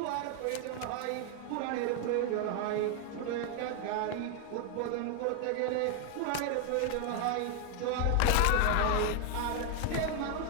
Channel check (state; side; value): different; both; correlation 0.00